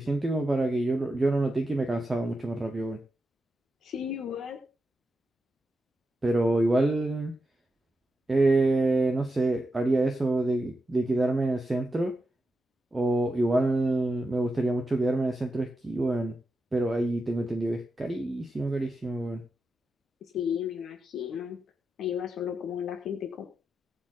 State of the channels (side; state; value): both; normal; correlation 0.88